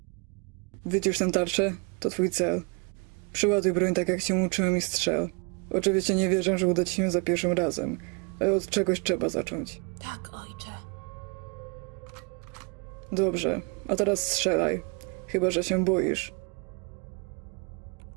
Wycisz tę tarczę, to twój cel. Przyładuj broń tak, jak cię uczyłem i strzel. Oczywiście nie wierzę, że uda ci się za pierwszym razem, ale od czegoś trzeba zacząć. Tak, ojcze. Dobrze, a teraz strzelaj. Chyba że się boisz.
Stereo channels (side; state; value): left; quieter; 33.8 dB